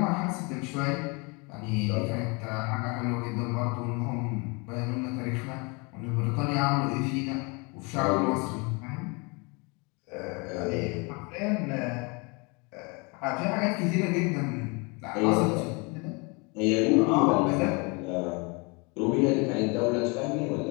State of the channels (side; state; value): right; quieter; 30.0 dB